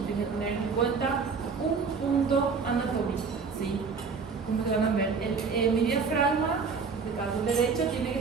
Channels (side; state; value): left; quieter; 5.2 dB